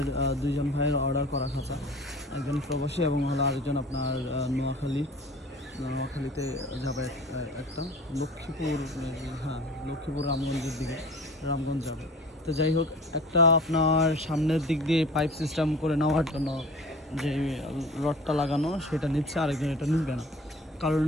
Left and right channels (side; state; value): both; normal; correlation 0.43